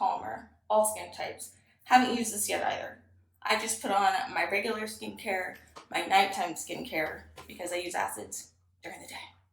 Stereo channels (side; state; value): both; identical; correlation 1.00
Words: all skin types. Haven't used this yet either. I just put on my regular skincare, my nighttime skincare, because I use acids during the day.